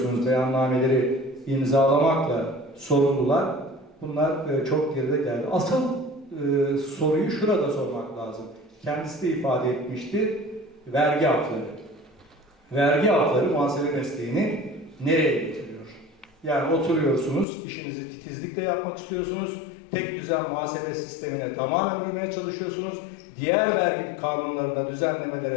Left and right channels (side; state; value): right; drops out; at 17.4 s